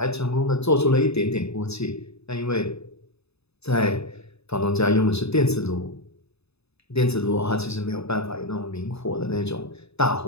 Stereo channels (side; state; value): right; late; 0.79 ms